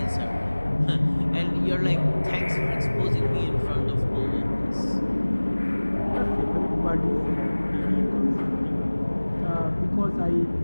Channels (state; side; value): inverted; both; correlation -1.00